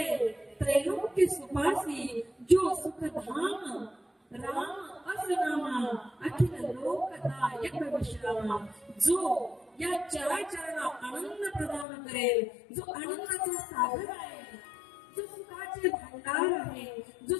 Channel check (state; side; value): drops out; right; at 11.9 s